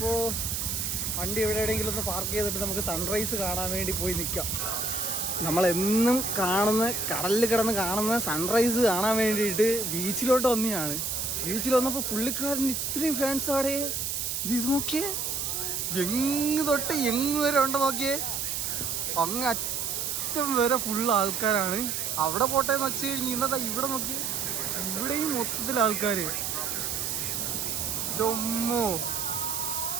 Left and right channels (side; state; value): right; noise; hiss, 1 dB below the sound